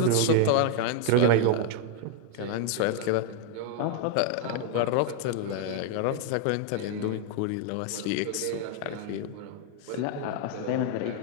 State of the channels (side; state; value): both; different; correlation 0.00